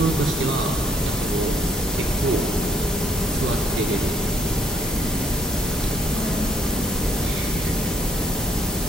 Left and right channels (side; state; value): both; normal; correlation 0.68